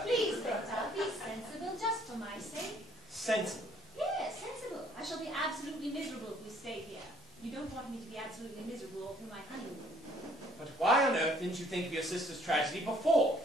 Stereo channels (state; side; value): normal; both; correlation 0.61